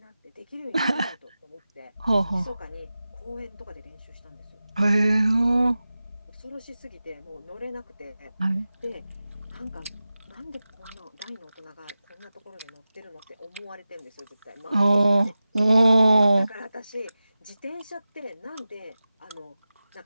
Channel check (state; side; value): inverted; both; correlation -0.95